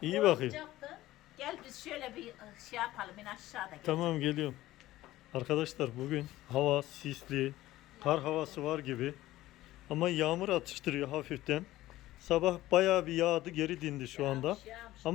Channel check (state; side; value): quieter; right; 16.0 dB